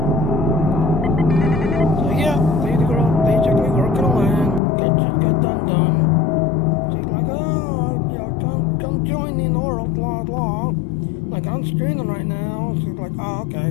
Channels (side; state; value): right; drops out; at 4.6 s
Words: So yeah, lady girl basically working on land. Just got done. She's like, oh, yeah, come join me in oral, blah, blah. Like, I'm streaming right now. She's like, oh,